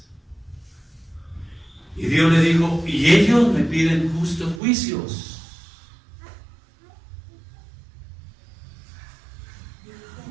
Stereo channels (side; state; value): left; drops out; at 4.6 s